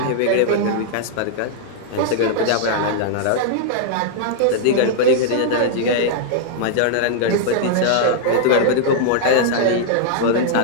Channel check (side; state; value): both; different; correlation -0.01